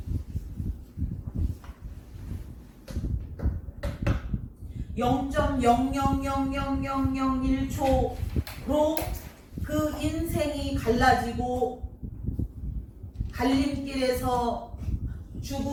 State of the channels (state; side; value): identical; both; correlation 1.00